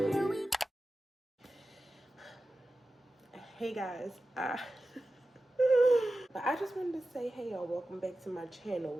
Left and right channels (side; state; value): both; normal; correlation 0.94